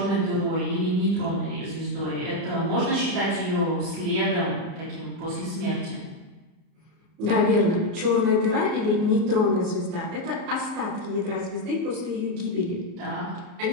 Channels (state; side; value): late; left; 34 ms